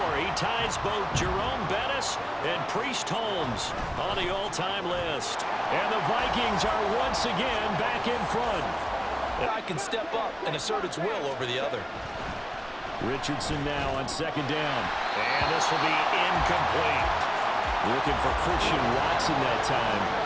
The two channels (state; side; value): identical; both; correlation 1.00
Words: He ties both Jerome Bettis and Priest Holmes on the all-time list. And the Vikings are once again back in front. I can step up and assert its will over the other. Richardson now on second down. And this will be incomplete. Looking for Christian Watson that time.